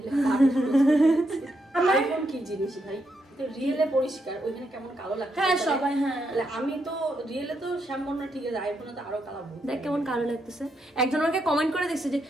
আইফোন কি জিনিস ভাই? রিয়েলে পরিষ্কার, ওইখানে কেমন কালো লাগছে। হ্যাঁ সবাই, হ্যাঁ আমি তো রিয়েলে তো শ্যামবর্ণ, ঠিক আছে, আইফোনে তো আরো কালো। দেখ কেমন কালো লাগতেছে। একজন আমাকে কমেন্ট করে দেখছে যে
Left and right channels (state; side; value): normal; both; correlation 0.80